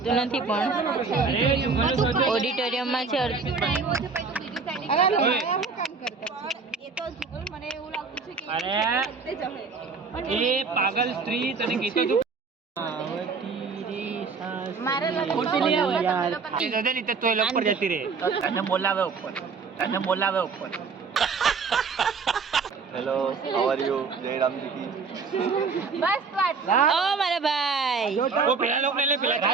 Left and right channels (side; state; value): left; quieter; 4.9 dB